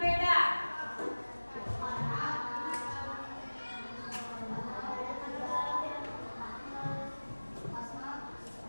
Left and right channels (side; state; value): both; inverted; correlation -1.00